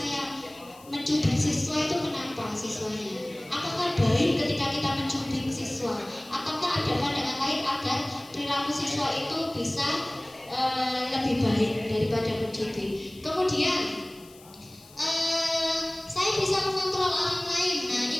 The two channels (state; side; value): noise; left; hiss, 23 dB below the sound